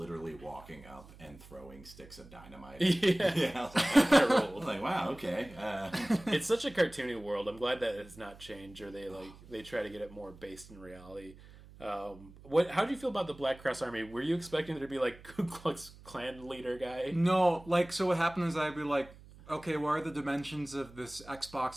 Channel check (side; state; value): right; noise; hum, 20 dB below the sound